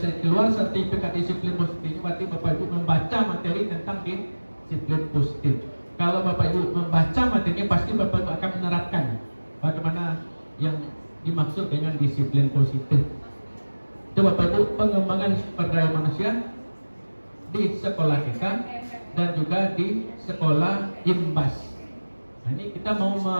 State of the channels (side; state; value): both; inverted; correlation -1.00